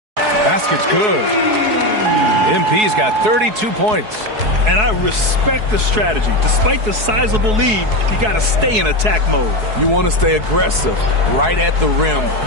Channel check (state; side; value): late; left; 4.7 ms